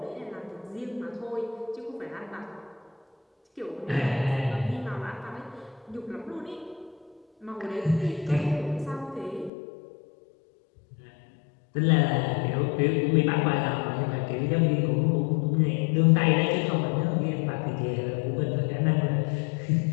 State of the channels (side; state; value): right; drops out; at 9.5 s